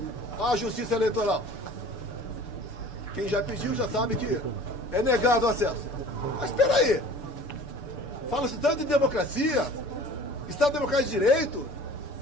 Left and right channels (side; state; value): right; late; 6.9 ms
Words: à Justiça Eleitoral. Quem já pediu já sabe que é negado o acesso. Mas espera aí. Fala-se tanto em democracia, Estado Democrático de Direito,